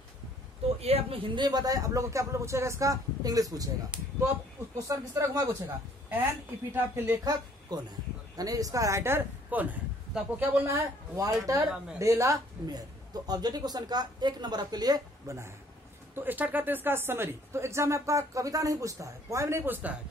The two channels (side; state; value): both; normal; correlation 0.60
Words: तो ये आपने हिंदी में बताया, आप लोग को क्या पूछेगा, इसका इंग्लिश पूछेगा। तो अब क्वेश्चन किस तरह घुमा पूछेगा, एन एपिटाफ के लेखक कौन है, यानी इसका राइटर कौन है। तो आपको क्या बोलना है, वाल्टर डेला मेयर। तो ऑब्जेक्टिव क्वेश्चन का 1 नंबर आपके लिए बना है। तो स्टार्ट करते हैं इसका समरी। तो एग्जाम में आपका कविता नहीं पूछता है, पोएम नहीं पूछता है,